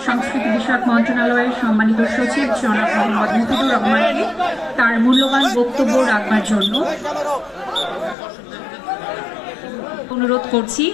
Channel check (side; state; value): right; drops out; at 8.2 s